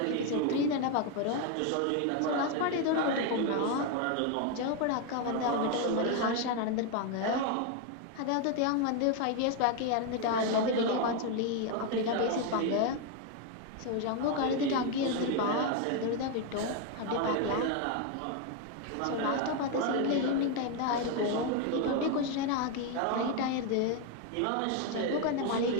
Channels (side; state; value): both; different; correlation 0.01